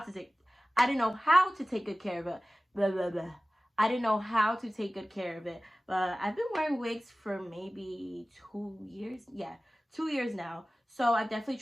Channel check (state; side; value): normal; both; correlation 0.97